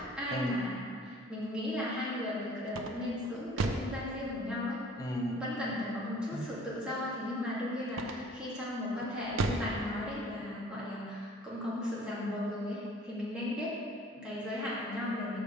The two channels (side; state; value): both; normal; correlation 0.51